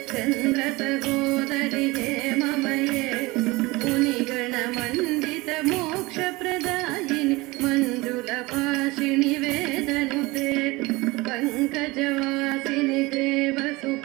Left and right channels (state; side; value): quieter; left; 22.5 dB